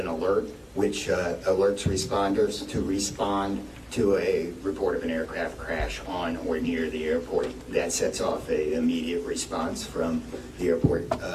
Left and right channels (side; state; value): both; identical; correlation 1.00